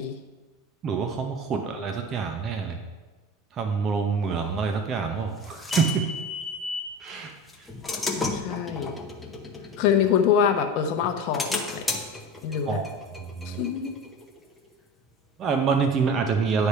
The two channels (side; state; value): both; normal; correlation 0.32